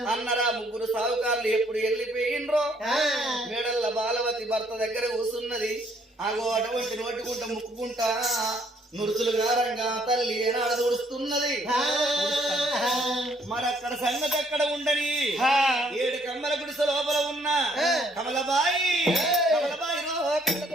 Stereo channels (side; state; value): both; normal; correlation 0.65